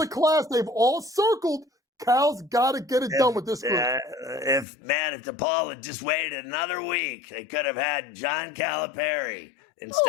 class they've all circled. Cal's got to get it done with this group. If DePaul had just waited another week, they could have had John Calipari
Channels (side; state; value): right; drops out; at 4.7 s